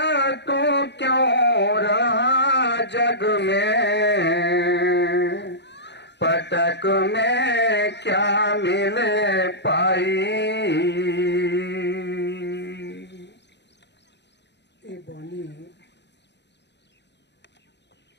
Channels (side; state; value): right; late; 0.50 ms